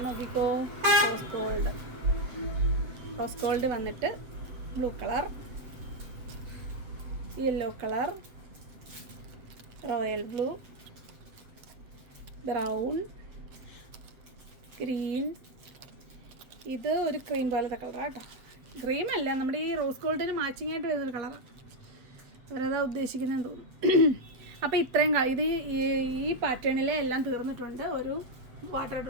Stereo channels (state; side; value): late; left; 7.9 ms